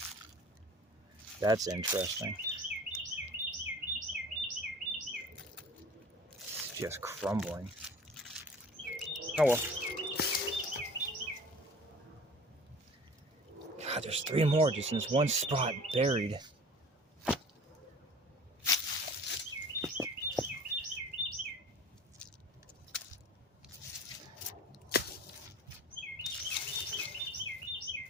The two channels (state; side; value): normal; both; correlation 0.44